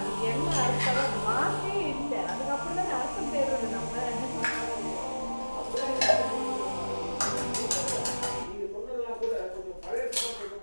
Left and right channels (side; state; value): both; inverted; correlation -1.00